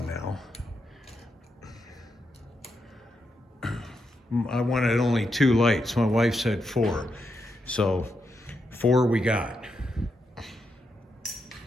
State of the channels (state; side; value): normal; both; correlation 0.84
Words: now. I wanted only 2 lights. My wife said 4. So 4 we got.